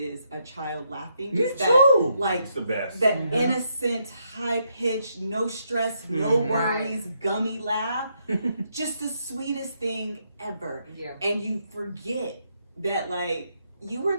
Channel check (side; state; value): both; inverted; correlation -0.77